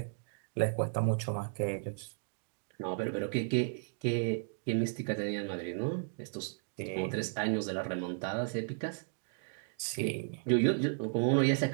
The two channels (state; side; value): silent; left; digital silence